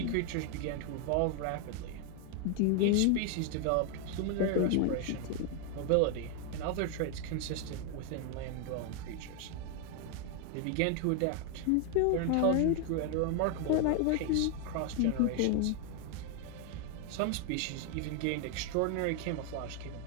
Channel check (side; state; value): both; different; correlation 0.01